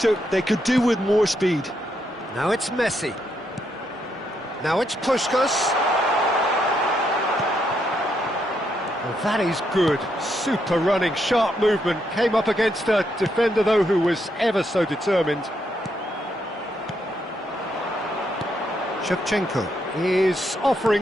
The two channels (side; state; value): both; normal; correlation 0.78